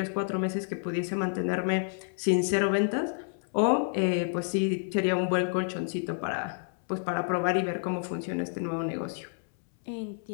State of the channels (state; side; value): silent; right; 58 dB below the other